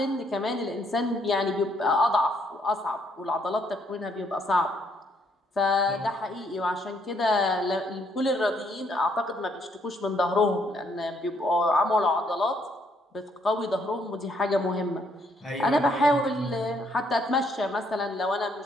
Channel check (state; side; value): normal; both; correlation 0.70